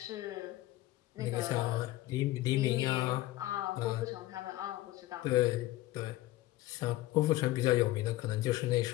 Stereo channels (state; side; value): quieter; right; 16.7 dB